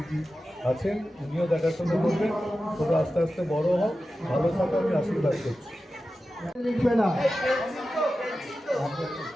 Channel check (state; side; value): normal; both; correlation 0.93